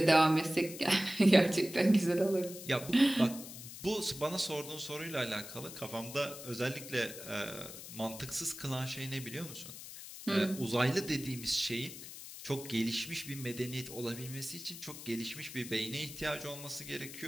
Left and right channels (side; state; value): left; noise; hiss, 12 dB below the sound